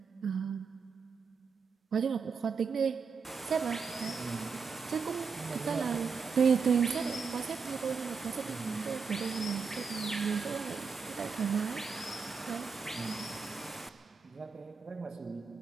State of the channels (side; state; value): left; quieter; 5.4 dB